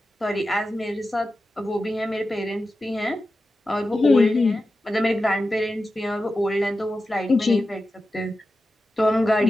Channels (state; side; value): normal; both; correlation 0.92